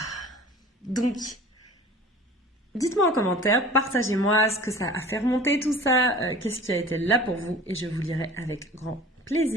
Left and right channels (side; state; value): both; normal; correlation 0.43